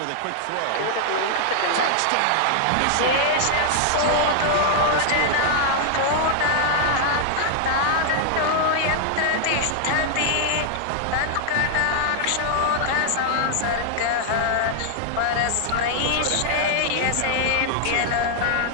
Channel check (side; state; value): both; different; correlation -0.01